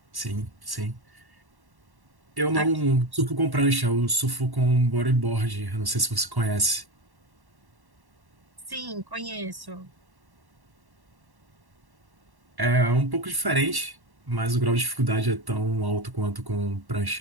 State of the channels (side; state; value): left; late; 1.1 ms